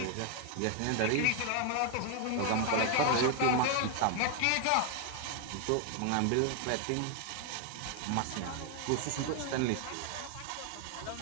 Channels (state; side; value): different; both; correlation 0.00